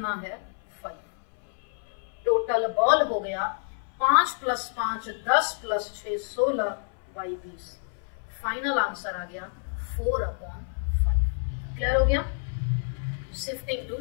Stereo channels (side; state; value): right; silent; 59 dB below the other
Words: है? 5। टोटल बॉल हो गया 5 + 5 10 + 6 16 बाई 20। फाइनल आंसर आ गया 4/5। क्लियर हो गया? Shifting to